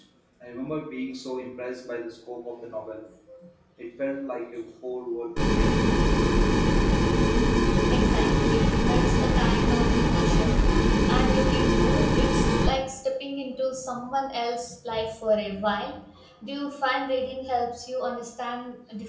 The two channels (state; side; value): identical; both; correlation 1.00